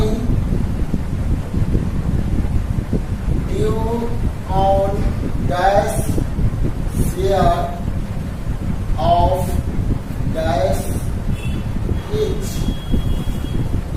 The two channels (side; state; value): both; identical; correlation 1.00